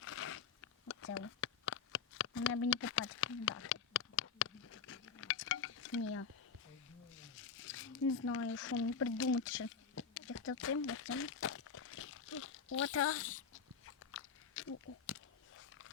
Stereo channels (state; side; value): quieter; right; 6.3 dB